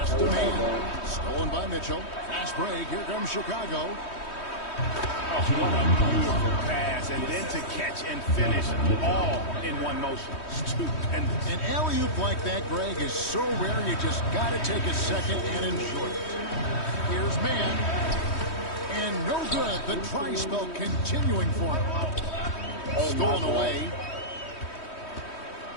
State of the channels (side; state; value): right; late; 3.1 ms